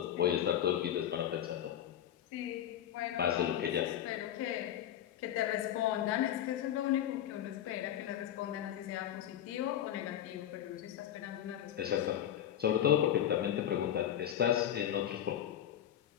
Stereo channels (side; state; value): right; quieter; 10.9 dB